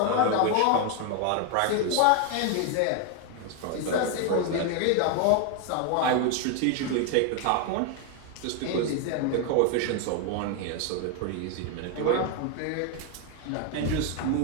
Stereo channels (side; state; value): both; different; correlation 0.01